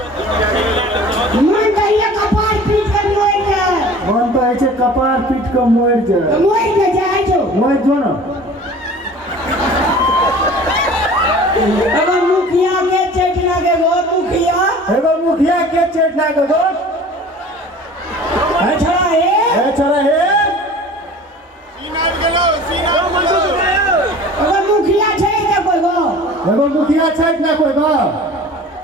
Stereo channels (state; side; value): normal; both; correlation 0.44